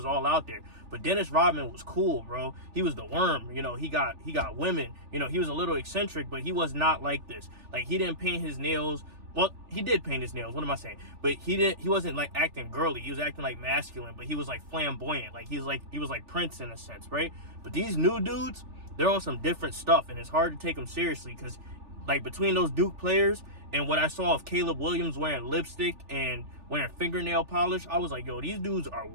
all out there. But Dennis Rodman was cool, bro. He was the worm. He got women. He was a little eccentric, but he was not like this. Like, he didn't paint his nails. Well, he did paint his nails. What am I saying? But he wasn't like acting girly. He was acting like masculine, but he was like flamboyant. Like he was like Prince in a sense, right? But these new dudes, they're on some different stuff, and it's hard to take them seriously because, like, between those Duke players and what I saw of Caleb Williams wearing lipstick and wearing fingernail polish, I was like, yo, these dudes are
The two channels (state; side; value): late; left; 3.4 ms